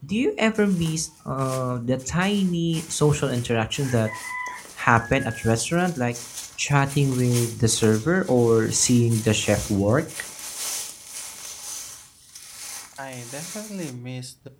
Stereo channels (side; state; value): both; identical; correlation 1.00